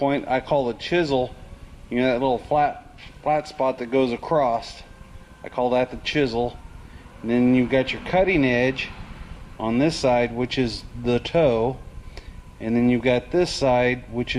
I call the chisel, you know, that little flat spot that goes across, I call that the chisel. And then you've got your cutting edge on this side, which is the toe, and then you've got this side, which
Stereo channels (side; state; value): both; identical; correlation 1.00